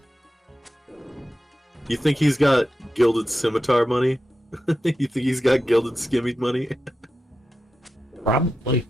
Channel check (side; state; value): both; normal; correlation 0.90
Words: You think he's got gilded scimitar money? You think he's got gilded skimmy money? Probably.